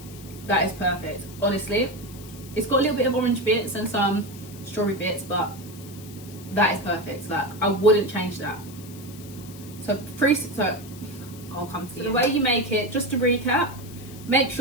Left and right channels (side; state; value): left; noise; hiss, 18 dB below the sound